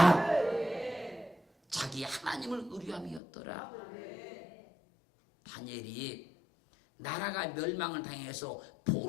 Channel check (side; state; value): right; drops out; at 3.2 s